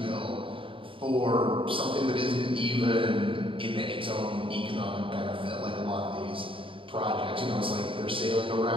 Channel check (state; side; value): late; left; 0.25 ms